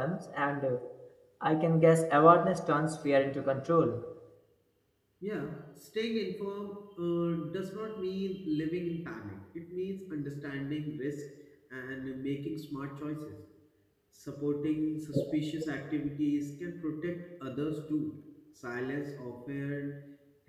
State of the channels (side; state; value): both; identical; correlation 1.00